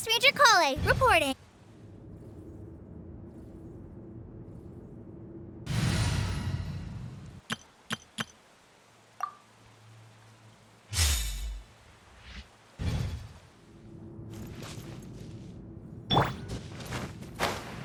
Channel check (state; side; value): identical; both; correlation 1.00